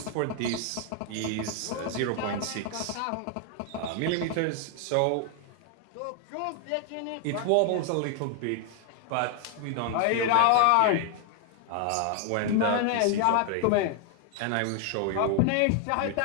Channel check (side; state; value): both; different; correlation 0.00